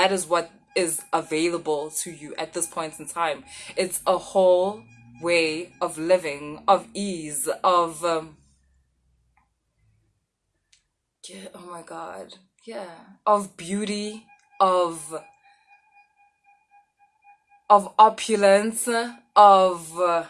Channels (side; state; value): both; identical; correlation 1.00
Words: is what is available to you at this point in time. It's a whole way of living, of ease, of yeah, oh my God. Yeah. Of beauty, of opulence, of